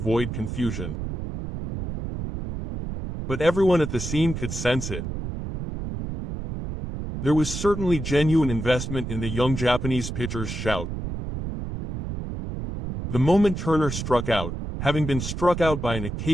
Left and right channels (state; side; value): noise; right; rumble, 6 dB below the sound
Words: confusion. But everyone at the scene could sense it. There was certainly genuine investment in the young Japanese pitcher's shout. The moment Turner struck out, having been struck out by an